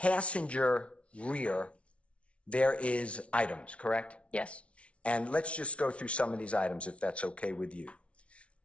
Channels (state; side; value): late; right; 0.061 ms